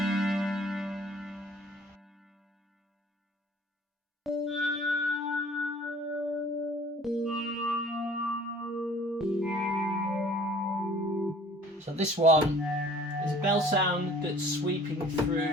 So this one is a bell sound that's sweeping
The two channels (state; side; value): normal; both; correlation 0.51